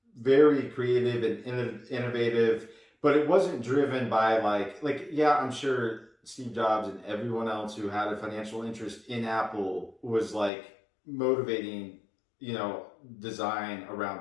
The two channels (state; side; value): drops out; right; at 10.5 s